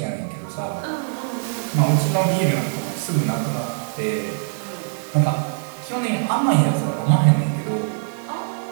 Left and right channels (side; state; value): left; silent; digital silence